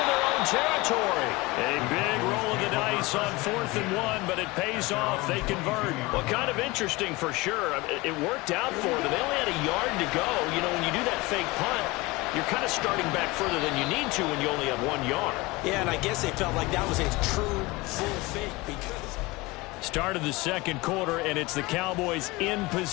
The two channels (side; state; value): right; quieter; 22.2 dB